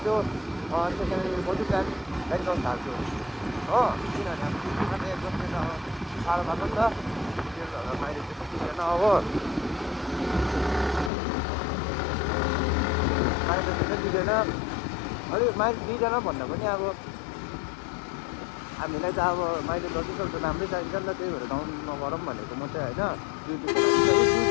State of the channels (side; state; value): right; drops out; at 11.1 s